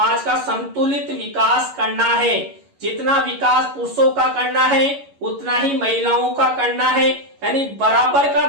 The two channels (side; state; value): left; late; 11 ms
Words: का संतुलित विकास करना है, जितना विकास पुरुषों का करना है उतना ही महिलाओं का करना है, यानी बराबर का